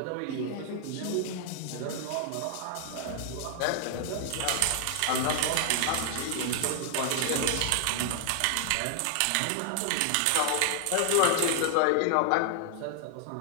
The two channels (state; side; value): different; both; correlation 0.00